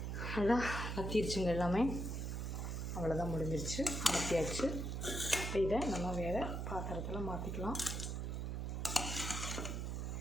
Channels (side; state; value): right; noise; hum, 3 dB below the sound